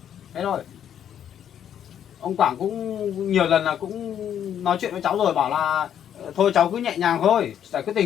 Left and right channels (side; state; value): right; quieter; 9.6 dB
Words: Thế thôi. Ông Quảng cũng nhiều lần là cũng nói chuyện với cháu rồi, bảo là thôi cháu cứ nhẹ nhàng thôi, giải quyết